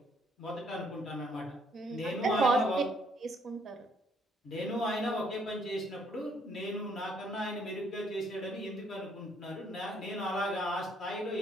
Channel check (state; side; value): normal; both; correlation 0.67